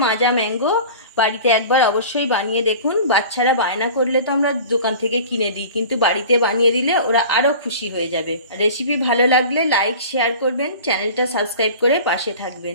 মাজা ম্যাঙ্গো বাড়িতে একবার অবশ্যই বানিয়ে দেখুন। বাচ্চারা বায়না করলে তো আমরা দোকান থেকে কিনে দিই, কিন্তু বাড়িতে বানিয়ে দিলে ওরা আরও খুশি হয়ে যাবে। রেসিপি ভালো লাগলে লাইক শেয়ার করবেন, চ্যানেলটা সাবস্ক্রাইব করে পাশে থাকবেন।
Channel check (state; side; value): inverted; both; correlation -0.39